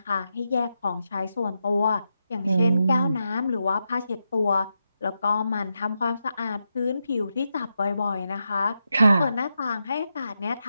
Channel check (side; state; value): both; inverted; correlation -0.86